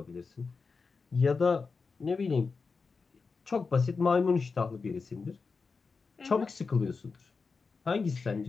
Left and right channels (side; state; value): right; quieter; 4.7 dB